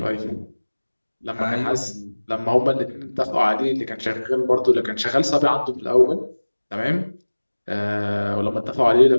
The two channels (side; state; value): both; inverted; correlation -1.00